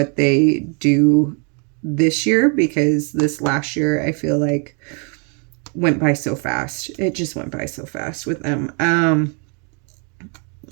they do this year, because this last year I feel like went by so fast. It just went by so fast with them. And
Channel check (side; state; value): left; quieter; 37.9 dB